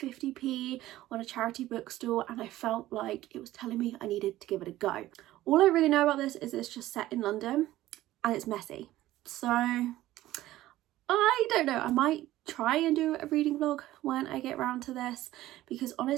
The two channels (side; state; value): left; quieter; 15.4 dB